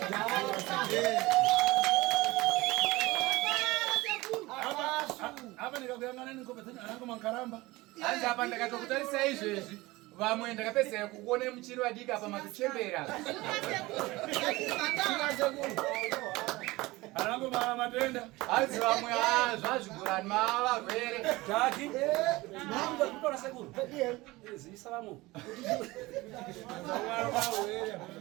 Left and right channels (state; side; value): quieter; left; 20.6 dB